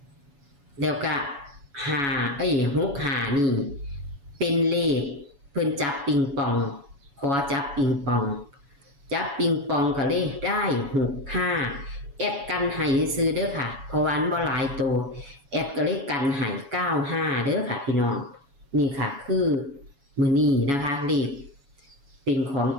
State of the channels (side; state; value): left; late; 7.2 ms